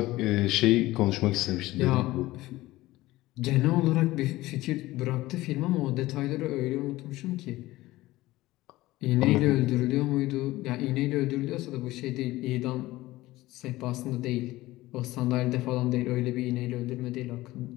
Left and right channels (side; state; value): right; quieter; 17.9 dB